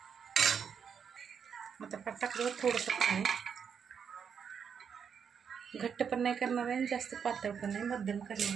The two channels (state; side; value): quieter; left; 7.1 dB